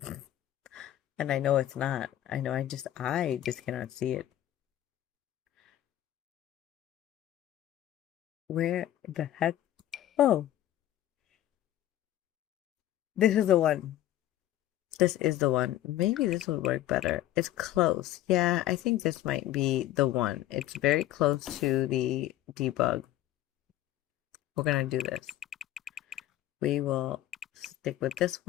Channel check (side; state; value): right; quieter; 13.4 dB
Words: And I know it's not. I know I just cannot see it. Where the heck? Oh, this is the one. This is the one. Maybe this would work better. It's close. Yeah, I think this might be the one. It's very close to the debug. We're gonna do this. We will stick with this